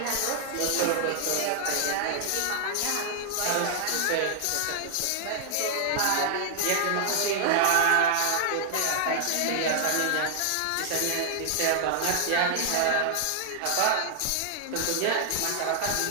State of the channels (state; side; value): different; both; correlation 0.00